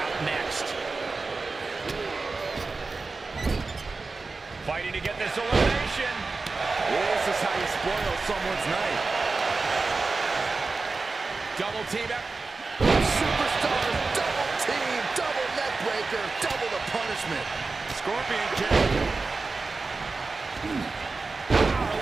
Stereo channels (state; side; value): quieter; left; 3.9 dB